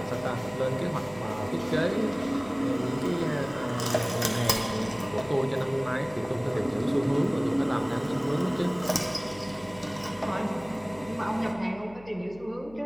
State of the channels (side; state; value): left; noise; hum, 21 dB below the sound